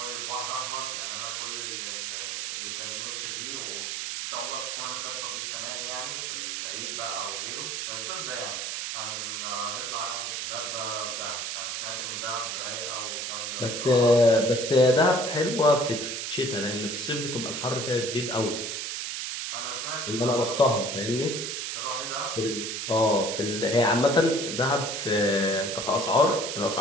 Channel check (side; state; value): right; noise; hiss, 3 dB below the sound